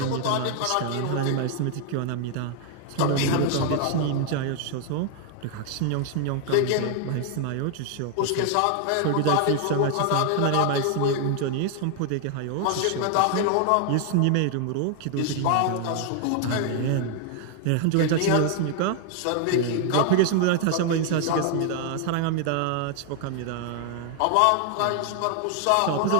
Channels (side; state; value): both; different; correlation 0.00